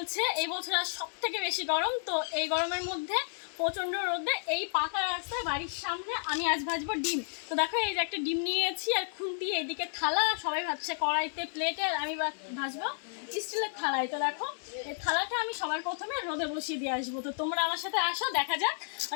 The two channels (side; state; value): right; silent; digital silence